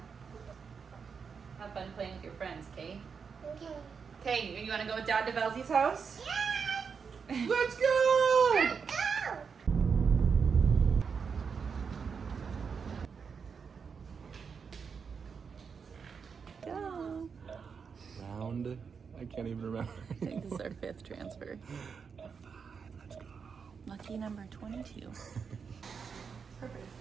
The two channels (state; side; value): quieter; left; 6.0 dB